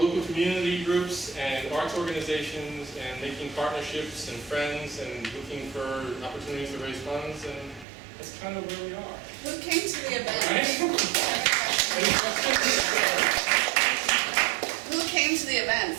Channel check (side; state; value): left; drops out; at 7.9 s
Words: community groups and arts organizations and making partnerships and friends and looking for opportunities to raise funds, and that's kind of where we are. Who came to the event? Right? Any questions? Who came to the